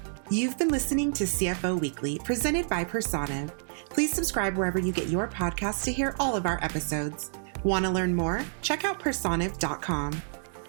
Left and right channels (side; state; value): left; silent; digital silence